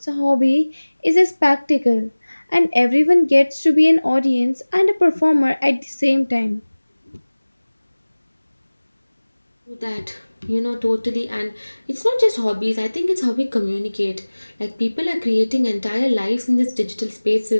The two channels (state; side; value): inverted; both; correlation -1.00